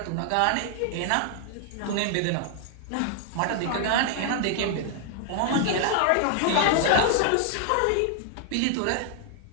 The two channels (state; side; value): different; both; correlation 0.00